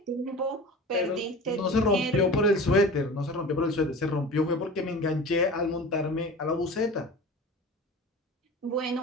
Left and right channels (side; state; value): both; normal; correlation 0.36